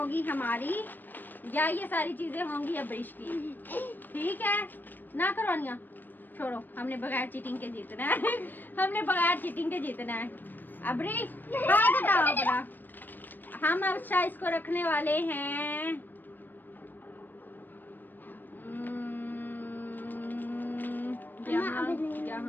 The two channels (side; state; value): right; late; 0.091 ms